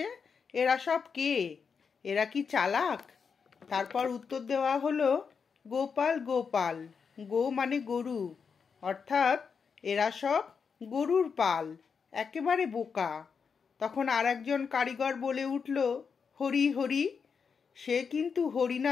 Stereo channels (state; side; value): quieter; right; 5.9 dB